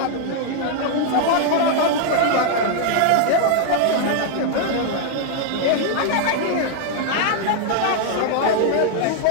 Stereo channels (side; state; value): both; different; correlation 0.00